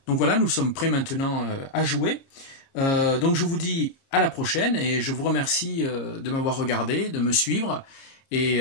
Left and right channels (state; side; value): late; right; 30 ms